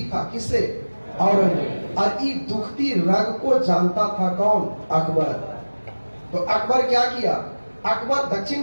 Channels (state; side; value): inverted; both; correlation -1.00